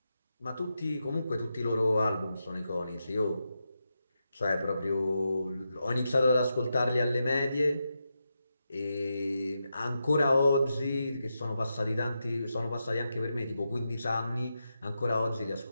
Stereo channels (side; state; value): both; inverted; correlation -0.87